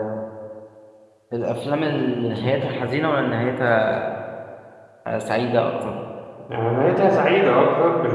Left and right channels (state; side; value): identical; both; correlation 1.00